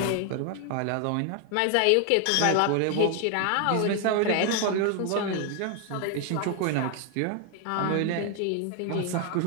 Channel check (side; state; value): both; different; correlation 0.00